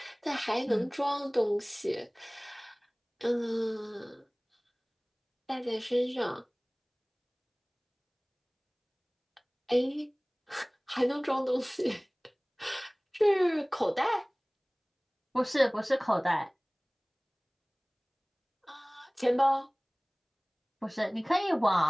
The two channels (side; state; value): both; identical; correlation 1.00